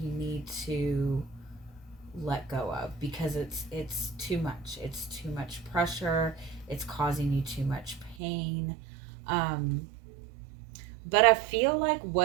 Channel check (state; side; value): drops out; left; at 8.2 s